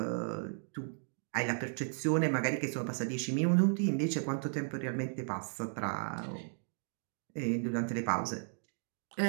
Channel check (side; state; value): left; silent; 54 dB below the other